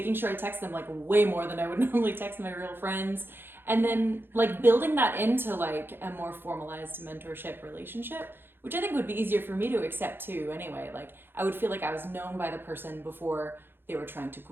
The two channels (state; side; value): late; left; 0.10 ms